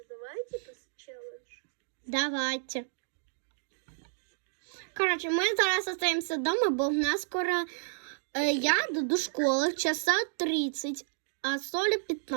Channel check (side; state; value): left; silent; digital silence